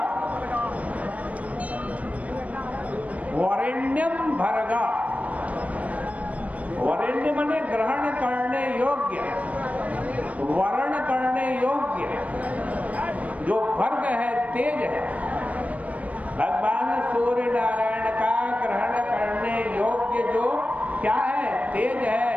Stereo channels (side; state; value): left; late; 0.068 ms